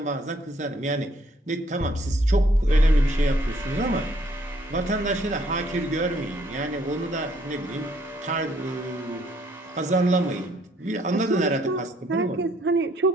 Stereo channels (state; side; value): normal; both; correlation 0.66